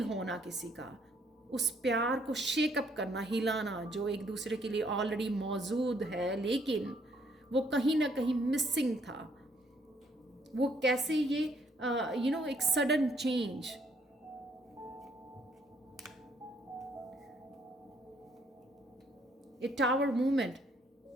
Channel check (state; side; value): normal; both; correlation 0.67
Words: होना किसी का, उस प्यार को शेकअप करना, हिलाना, जो एक दूसरे के लिए ऑलरेडी मौजूद है लेकिन वो कहीं ना कहीं मिसिंग था। वो कैसे ये एक सडन चेंज, ए टावर मूवमेंट,